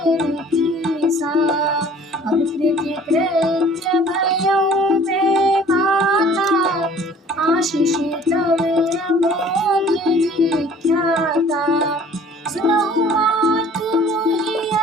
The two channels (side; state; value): both; normal; correlation 0.51